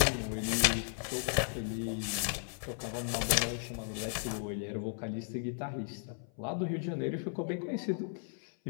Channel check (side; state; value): right; silent; 54 dB below the other